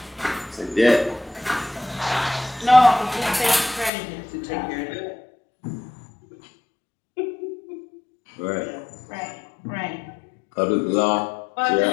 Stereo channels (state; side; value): drops out; right; at 3.9 s